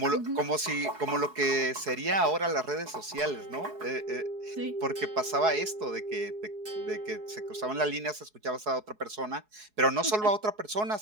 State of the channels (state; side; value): late; left; 4.7 ms